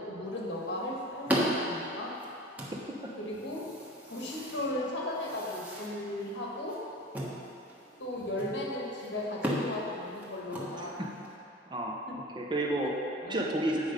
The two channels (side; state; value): both; normal; correlation 0.40